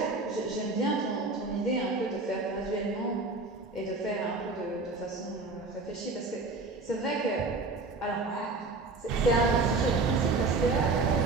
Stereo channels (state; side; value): quieter; left; 3.6 dB